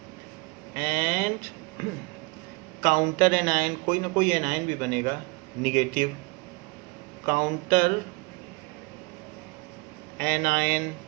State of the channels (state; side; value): quieter; left; 27.0 dB